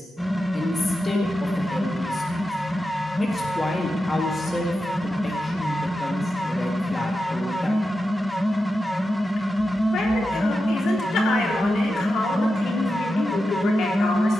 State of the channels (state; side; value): normal; both; correlation 0.90